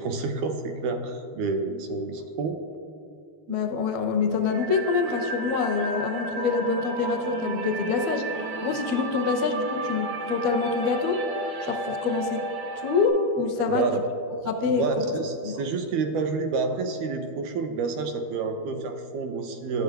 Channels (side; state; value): left; late; 12 ms